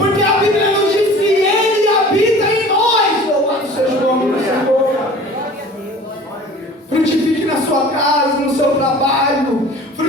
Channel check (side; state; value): both; normal; correlation 0.44